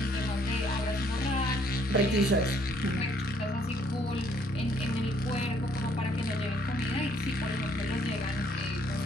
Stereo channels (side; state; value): both; normal; correlation 0.65